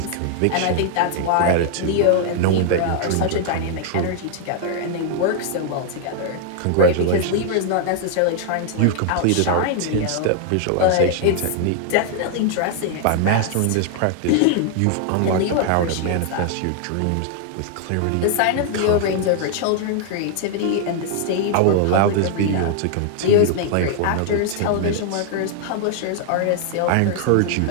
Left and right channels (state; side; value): different; both; correlation 0.00